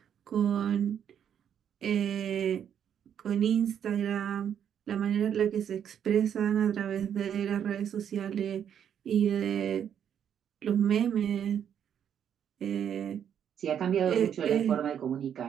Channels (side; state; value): left; quieter; 8.9 dB